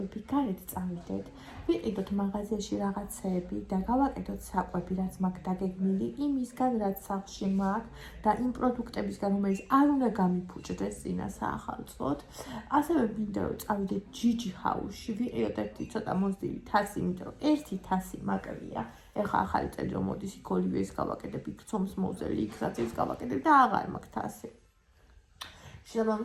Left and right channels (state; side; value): identical; both; correlation 1.00